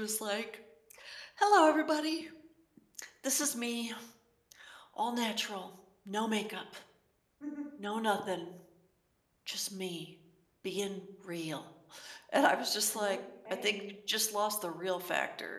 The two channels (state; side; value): identical; both; correlation 1.00